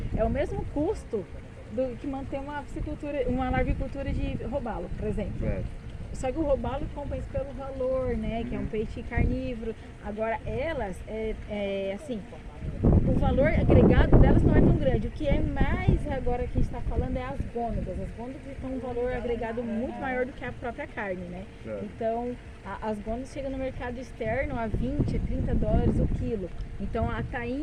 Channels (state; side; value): identical; both; correlation 1.00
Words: é o mesmo custo do que manter uma larvicultura de robalo, por exemplo. Claro. Só que o robalo compensa pelo valor, né, que é um peixe carnívoro. Agora, elas, assim, o valor agregado delas não é tão grande. O que é mais agora que a gente está falando é as gônadas. As gônadas têm um valor agregado muito maior do que a própria carne, né? Claro. Então, as gônadas chegam no mercado externo a 20, a 30 dólares o quilo. Então, a